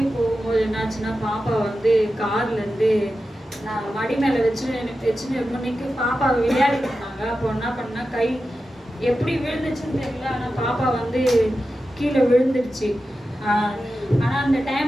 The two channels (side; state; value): both; normal; correlation 0.92